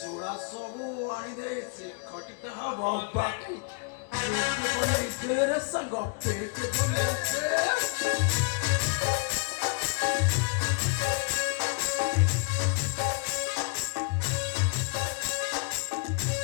সবু আনি দে সে খটিটা হব বাকি পেকে বনে তেরে সঙ্গ পেকে বনে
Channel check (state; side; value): quieter; right; 34.5 dB